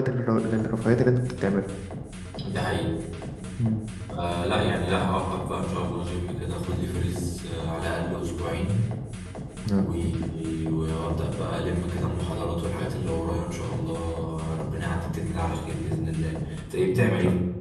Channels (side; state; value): both; identical; correlation 1.00